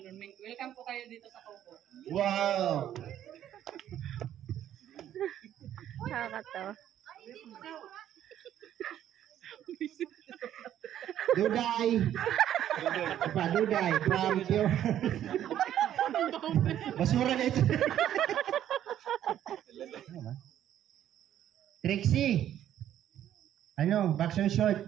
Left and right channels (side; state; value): left; quieter; 11.2 dB